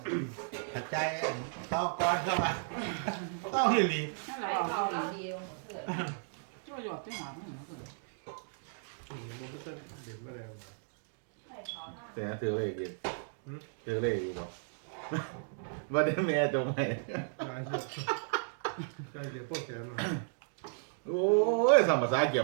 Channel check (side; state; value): left; silent; digital silence